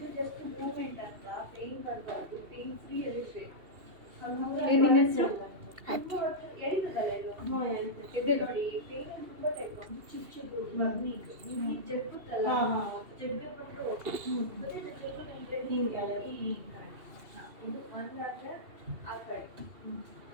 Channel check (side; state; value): left; late; 2.7 ms